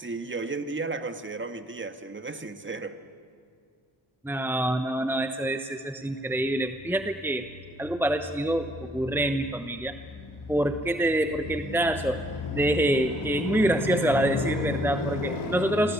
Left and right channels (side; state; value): both; normal; correlation 0.66